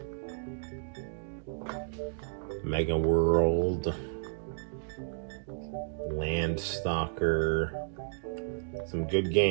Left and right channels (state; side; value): silent; left; digital silence